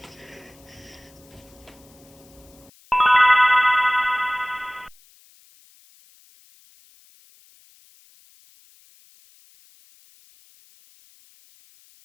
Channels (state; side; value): noise; left; hiss, 28 dB below the sound